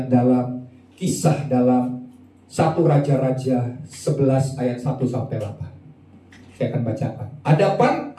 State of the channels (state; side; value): identical; both; correlation 1.00